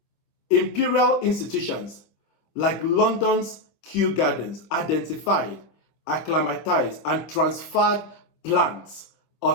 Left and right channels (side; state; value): right; late; 26 ms